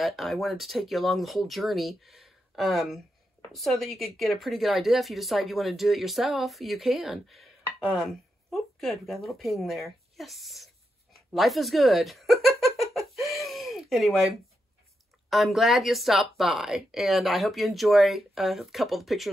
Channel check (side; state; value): both; normal; correlation 0.85